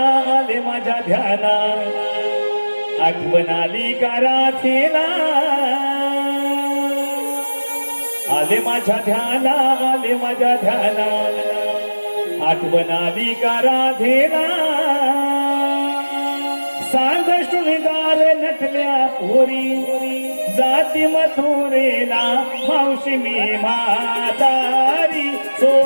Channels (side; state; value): both; inverted; correlation -1.00